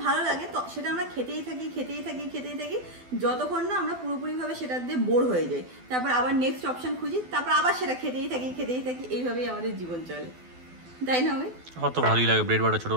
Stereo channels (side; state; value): left; late; 12 ms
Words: ভালো লাগে তো সেটা আমরা খেতেই থাকি যতক্ষণ না আমরা পুরোপুরিভাবে সেটা দিয়ে বোর হয়ে যাই, তারপর আবার নেক্সট অপশন খুঁজি, তারপর আবার সেটা খেতেই থাকি, এইভাবেই আমাদের জীবন চলে, তাই না? আমি অত ভালোই লাগে ব্রেড বাটার